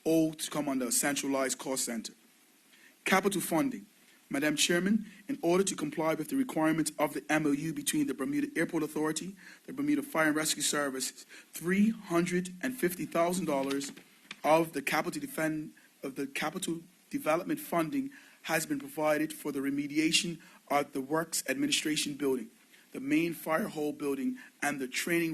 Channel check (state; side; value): identical; both; correlation 1.00